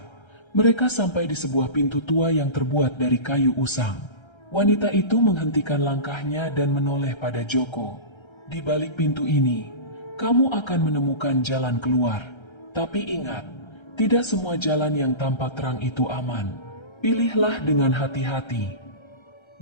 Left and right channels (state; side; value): late; right; 1.3 ms